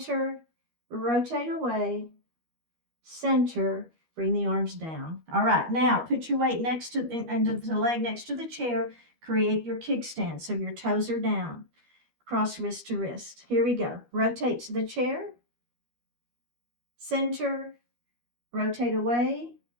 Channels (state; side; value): late; left; 13 ms